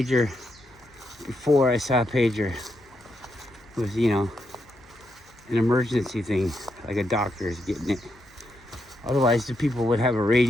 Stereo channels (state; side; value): noise; left; hum, 29 dB below the sound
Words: before I saw a pager. It was, an emergency thing, like a doctor is getting it. Otherwise, the people would have a